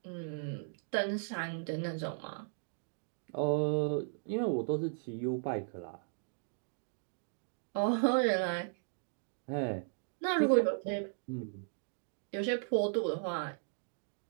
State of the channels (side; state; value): left; silent; digital silence